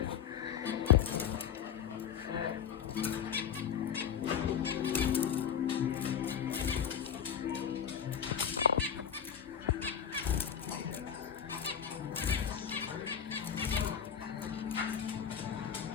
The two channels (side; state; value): right; quieter; 8.2 dB